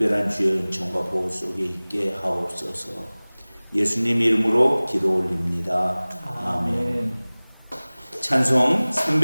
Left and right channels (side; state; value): both; inverted; correlation -1.00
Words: 주의 은총과 보호 속에 있게 하옵소서. 예수님 이름으로 기도 올립니다. 아멘. 찬송